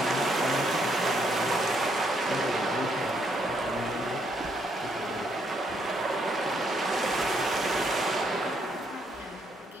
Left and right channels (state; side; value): normal; both; correlation 0.73